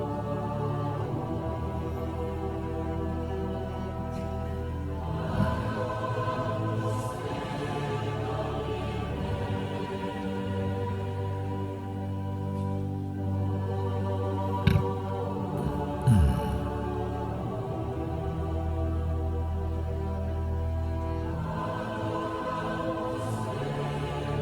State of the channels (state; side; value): identical; both; correlation 1.00